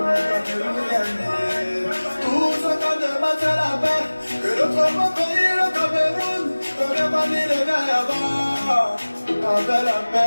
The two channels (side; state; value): both; inverted; correlation -1.00